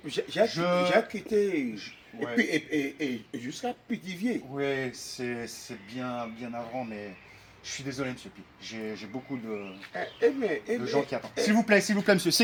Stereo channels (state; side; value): identical; both; correlation 1.00